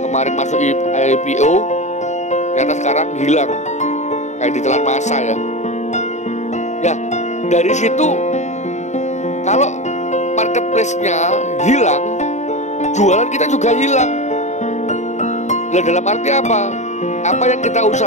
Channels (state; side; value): late; right; 0.34 ms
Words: masuk IPO, ternyata sekarang hilang, kayak ditelan masa ya. Ya, dari situ kalau marketplace-nya hilang, jualan kita juga hilang. Nah, dalam arti apa? Apa yang kita